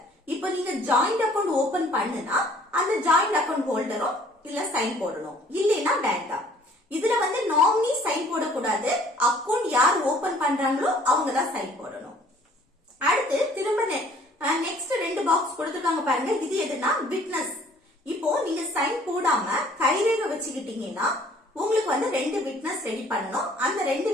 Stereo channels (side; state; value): both; normal; correlation 0.56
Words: இப்போ நீங்க ஜாயிண்ட் அக்கௌண்ட் ஓபன் பண்ணுனா அந்த ஜாயிண்ட் அக்கௌண்ட் ஹோல்டரும் இல்ல சைன் போடணும், இல்லைன்னா வேண்டாம். இதுல வந்து நாமினி சைன் போடக்கூடாது, அக்கௌண்ட் யார் ஓபன் பண்றாங்களோ அவங்க தான் சைன் போடணும். அடுத்து திரும்ப நெக்ஸ்ட் ரெண்டு பாக்ஸ் கொடுத்திருக்காங்க பாருங்க, இது எதுனா விட்னஸ். இப்போ நீங்க சைன் போடாம கைரேகை வச்சுக்கிட்டீங்கன்னா உங்களுக்கு வந்து ரெண்டு விட்னஸ் ரெடி பண்ணணும். அந்த ரெண்டு